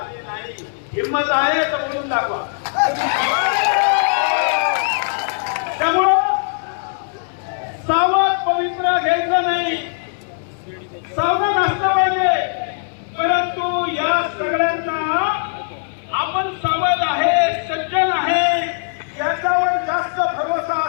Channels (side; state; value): right; silent; digital silence